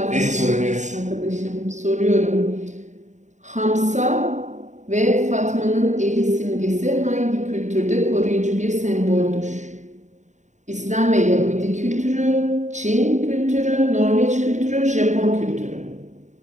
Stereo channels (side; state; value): left; late; 0.34 ms